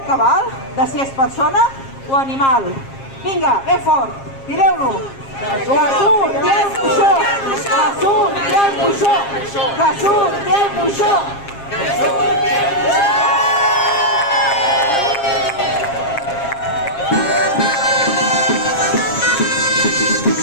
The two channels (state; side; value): late; right; 7.4 ms